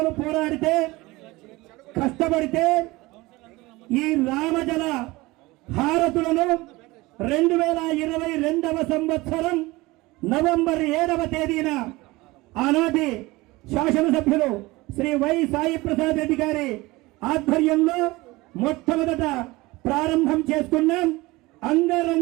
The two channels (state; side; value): quieter; left; 21.2 dB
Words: పోరాడితే, కష్టపడితే ఈ రామజల హారతులను 2022వ సంవత్సరం నవంబర్ 7వ తేదీన ఆనాటి శాసనసభ్యులు శ్రీ వై సాయి ప్రసాద్ రెడ్డి గారి ఆధ్వర్యంలో మొట్టమొదట ప్రారంభం చేసుకున్నాం.